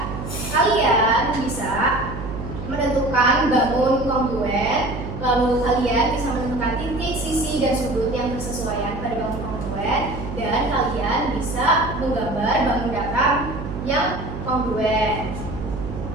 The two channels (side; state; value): right; noise; hum, 8 dB below the sound